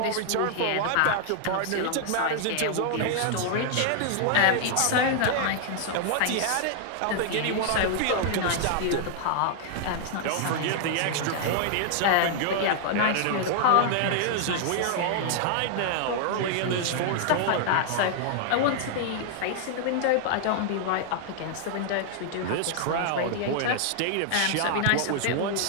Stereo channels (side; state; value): both; different; correlation 0.00